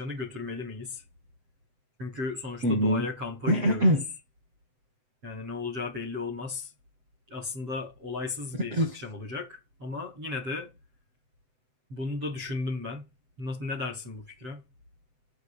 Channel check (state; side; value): late; left; 7.8 ms